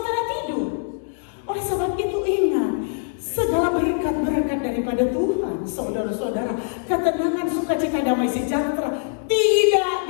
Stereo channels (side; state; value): right; silent; digital silence